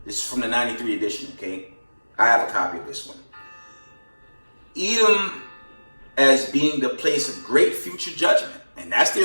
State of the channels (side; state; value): both; inverted; correlation -1.00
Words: This is from the 93 edition, okay? I have a copy of this one. Edom as being the place of great future judgment. And that's